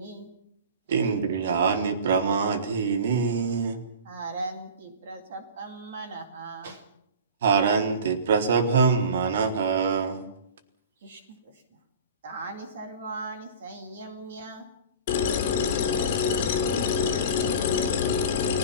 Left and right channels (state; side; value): inverted; both; correlation -0.38